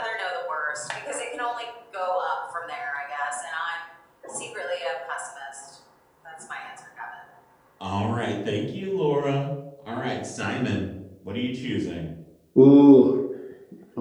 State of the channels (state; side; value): identical; both; correlation 1.00